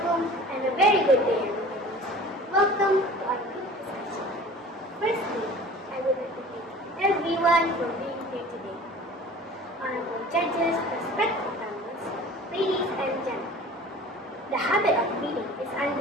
and a very good day everybody. Welcome to our group discussion. Firstly, I would like to thank everyone for being here today. Honorable judges, respected panelists, ladies and gentlemen. The habit of reading is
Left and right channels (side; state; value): both; normal; correlation 0.43